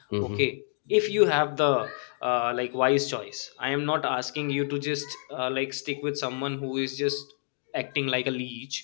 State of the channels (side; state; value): right; silent; 59 dB below the other